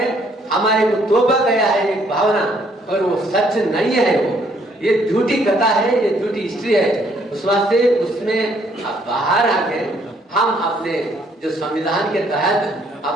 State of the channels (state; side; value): normal; both; correlation 0.67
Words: हमारे को तोबा गया है एक भावना, और वो सच नहीं है। वो ये झूठी कथा है, ये झूठी हिस्ट्री है। उस वास्ते उसमें बाहर आके हम अपने जो संविधान के तहत